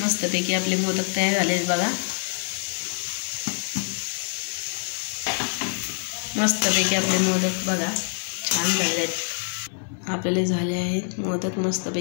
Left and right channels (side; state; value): right; silent; 59 dB below the other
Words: मस्तपैकी आपले मोदक तयार झाले आहेत बघा. मस्तपैकी आपले मोदक बघा छान झाले आहेत. आपले झाले आहेत मोदक